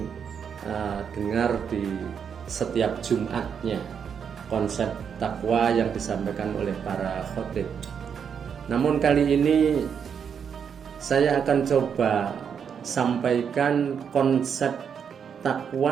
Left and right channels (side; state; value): left; quieter; 7.3 dB